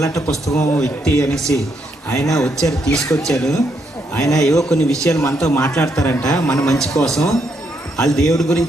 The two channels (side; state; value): both; normal; correlation 0.77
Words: పుస్తకం వ్యక్తి అనేసి. ఆయన వచ్చారు, తీసుకొచ్చారు. ఆయన ఏవో కొన్ని విషయాలు మనతో మాట్లాడతారంట మన మంచి కోసం. వాళ్ళు దేవుడి